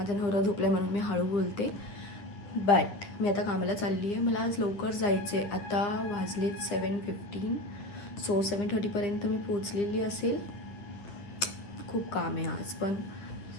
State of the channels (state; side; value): late; right; 10 ms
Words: नवरा झोपला म्हणून मी हळू बोलते, बट मी आता कामाला चालली आहे. मला आज लवकर जायचं आहे. आता वाजलेत 7:15. सो 7:30पर्यंत मी पोचलेली असेल. खूप काम आहे आज, पण